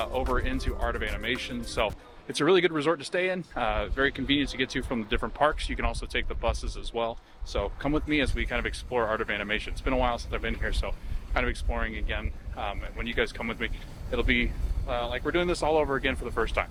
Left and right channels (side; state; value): both; identical; correlation 1.00